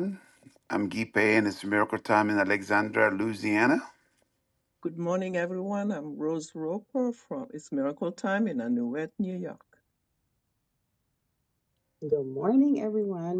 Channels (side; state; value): both; identical; correlation 1.00